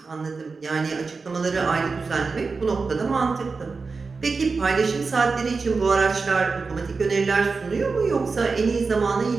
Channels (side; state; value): left; quieter; 4.4 dB